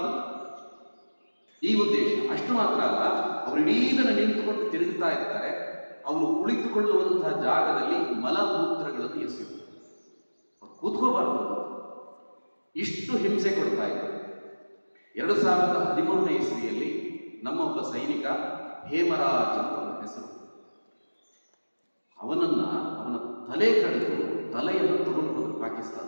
ಈ ಉದ್ದೇಶ. ಅಷ್ಟು ಮಾತ್ರ ಅಲ್ಲ, ಅವರು ಇಡೀ ದಿನ ನಿಂತುಕೊಂಡು ತಿರುಗುತ್ತಾ ಇರ್ತಾರೆ. ಅವರು ಕುಳಿತುಕೊಳ್ಳುವಂತಹ ಜಾಗದಲ್ಲಿ ಮಲಮೂತ್ರಗಳನ್ನು ಎಸೆಯುವುದು, ಕೂತ್ಕೋಬಾರದು. ಇಷ್ಟು ಹಿಂಸೆ ಕೊಡ್ತಾ ಇದ್ದಾರೆ. 2013ನೇ ಇಸ್ವಿಯಲ್ಲಿ ನಮ್ಮೊಬ್ಬ ಸೈನಿಕ ಹೇಮರಾಜ್ ಅಂತ ಅವನ ಹೆಸರು, ಅವನ ತಲೆ ಕಡಿದು ತಲೆಯನ್ನು ತಗೊಂಡು ಹೋದ್ರು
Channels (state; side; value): inverted; both; correlation -1.00